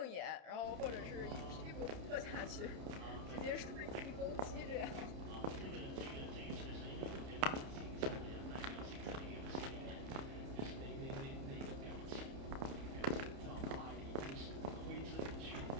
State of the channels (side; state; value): left; late; 30 ms